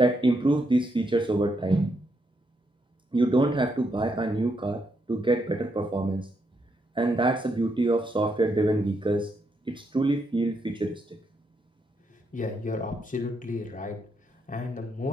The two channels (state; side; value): normal; both; correlation 0.79